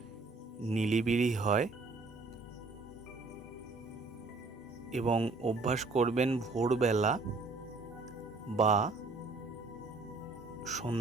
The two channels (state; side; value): quieter; left; 3.7 dB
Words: নিরিবিলি হয় এবং অভ্যাস করবেন ভোরবেলা বা